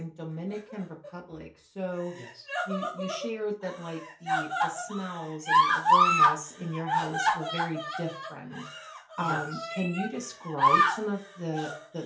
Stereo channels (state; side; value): identical; both; correlation 1.00